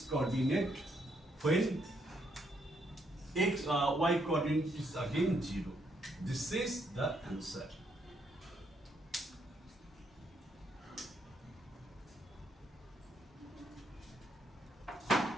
coordinate when y coordinate is again 0. This is the answer.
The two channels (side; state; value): both; normal; correlation 0.74